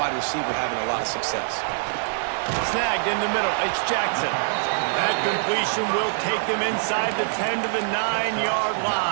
receiver having a lot of success. Snagged in the middle, it's Jackson. That completion will take them inside the 10 to the 9-yard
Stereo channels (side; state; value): left; silent; digital silence